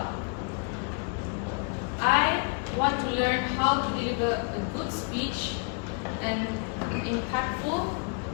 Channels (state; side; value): quieter; right; 39.1 dB